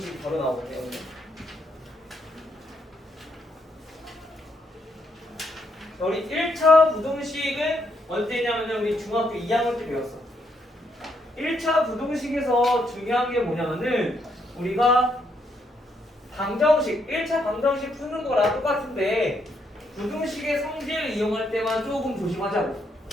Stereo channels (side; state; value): both; normal; correlation 0.75